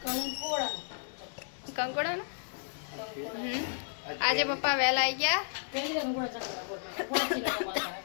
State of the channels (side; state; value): right; silent; digital silence